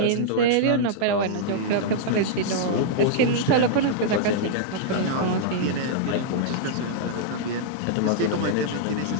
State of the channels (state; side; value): different; both; correlation -0.02